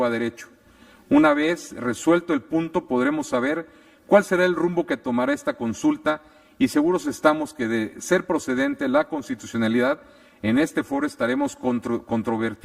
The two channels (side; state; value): both; identical; correlation 1.00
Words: a derecho. Una vez resuelto el punto, podremos saber cuál será el rumbo que tomará esta consulta y seguros estamos que, de ser procedente la constitucionalidad, en este foro estaremos